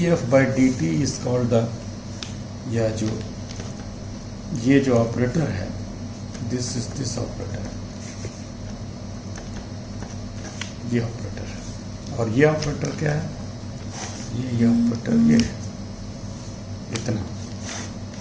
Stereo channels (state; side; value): identical; both; correlation 1.00